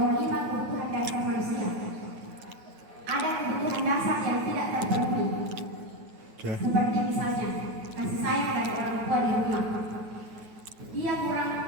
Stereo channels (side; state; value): left; late; 9.3 ms